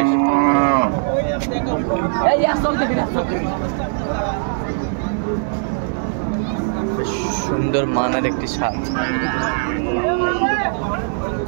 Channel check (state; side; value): silent; left; 65 dB below the other